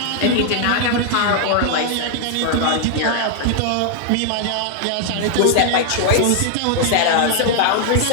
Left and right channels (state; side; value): different; both; correlation 0.00